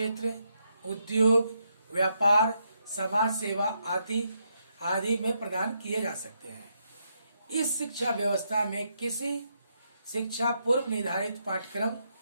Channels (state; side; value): inverted; both; correlation -0.79